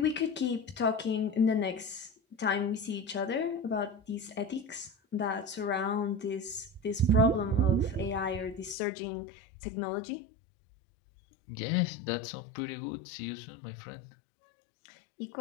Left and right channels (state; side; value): drops out; right; at 8.8 s